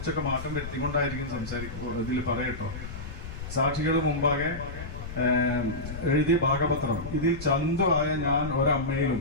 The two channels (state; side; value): noise; left; rumble, 9 dB below the sound